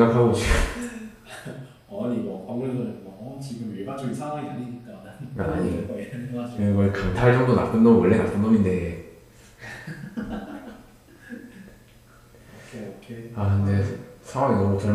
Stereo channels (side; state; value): both; identical; correlation 1.00